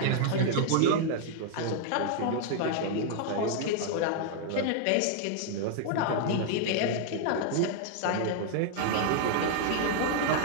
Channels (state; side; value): different; both; correlation 0.00